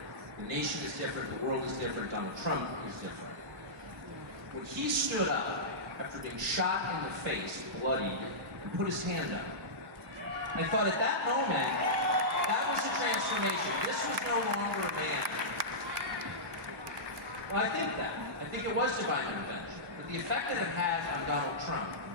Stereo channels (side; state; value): both; normal; correlation -0.15